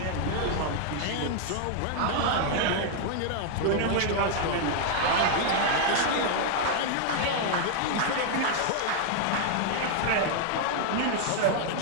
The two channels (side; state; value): both; different; correlation 0.00